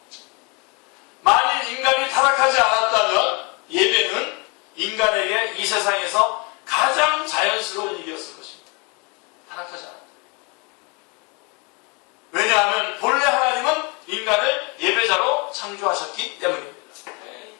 만일 인간이 타락하지 않았다면 예배는 인간에게 이 세상에서 가장 자연스러운 일이었을 것입니다. 타락하지 않았다. 왜냐하면 본래 하나님은 인간을 예배자로 창조하셨기 때문입니다.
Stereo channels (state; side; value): quieter; right; 30.7 dB